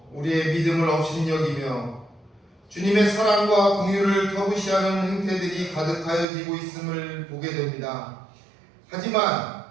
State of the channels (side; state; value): left; drops out; at 6.2 s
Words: 우리의 믿음을 업신여기며 주님의 사랑과 긍휼을 터부시하는 행태들이 가득하여지고 있음을 보게 됩니다. 하지만